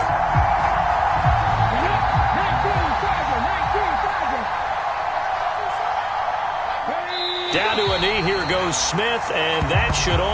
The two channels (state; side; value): identical; both; correlation 1.00